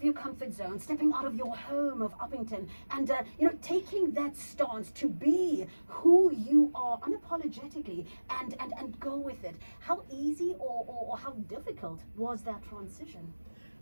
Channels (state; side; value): inverted; both; correlation -1.00